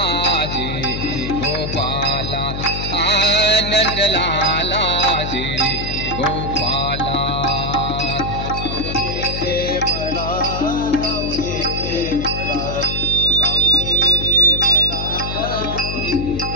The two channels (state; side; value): noise; left; hum, 5 dB below the sound